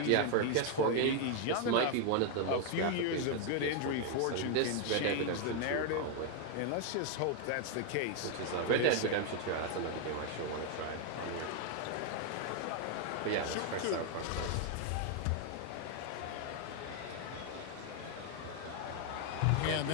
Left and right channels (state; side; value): different; both; correlation 0.00